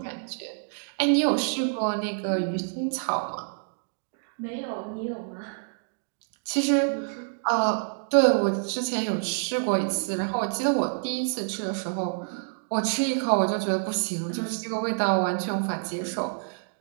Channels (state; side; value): silent; left; digital silence